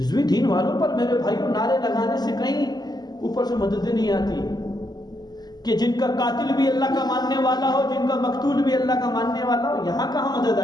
دین والوں پر میرے بھائیوں نعرے لگانے سے کہیں اوپر سے مدد نہیں آتی کہ جن کا قاتل بھی اللہ کا ماننے والا ہو، جن کا مقتول بھی اللہ کا ماننے والا ہو، یہاں کہاں مدد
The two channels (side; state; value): right; late; 0.20 ms